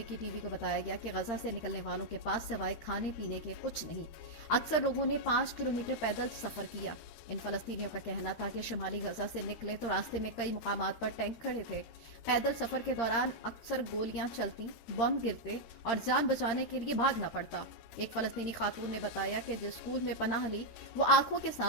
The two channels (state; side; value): late; right; 13 ms